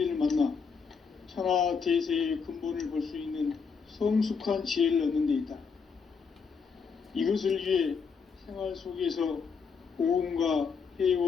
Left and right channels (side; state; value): right; quieter; 5.6 dB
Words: 만나 천하 대세의 근본을 볼 수 있는 성숙한 지혜를 얻는 데 있다. 이것을 위해 생활 속에서 보험과